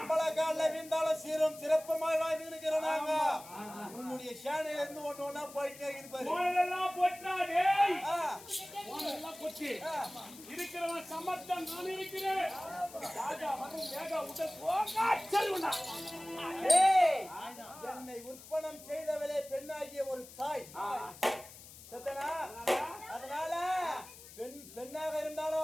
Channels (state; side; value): noise; left; hiss, 17 dB below the sound